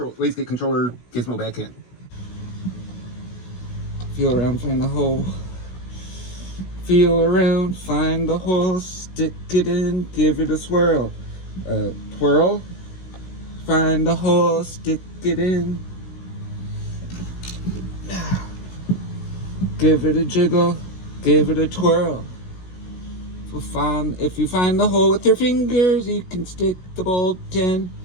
controller gizmo back in. Feel around, find the hole. Feel around, find the hole, stick it in, give it a swirl. Twirl. Find the hole, stick it in. Give it a jiggle, give it a twirl. If you find the hole with your fingers, you can stick the bolt in.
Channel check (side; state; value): right; late; 16 ms